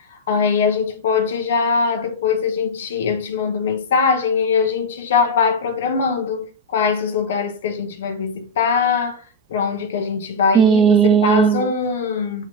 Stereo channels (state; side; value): normal; both; correlation -0.05